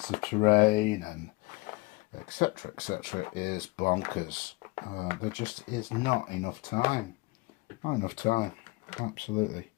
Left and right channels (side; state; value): right; quieter; 24.0 dB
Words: of terrain and etc is bonkers. There just is not enough time. Absolutely.